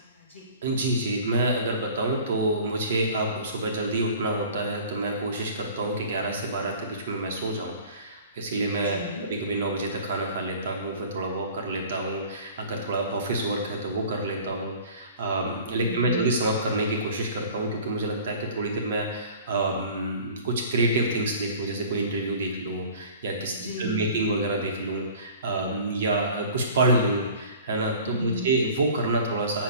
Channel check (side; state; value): both; inverted; correlation -0.45